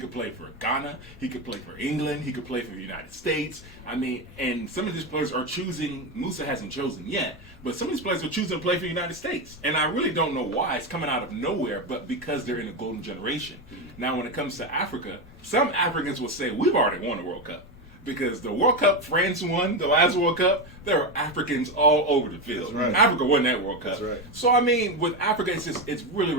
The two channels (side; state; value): both; normal; correlation 0.13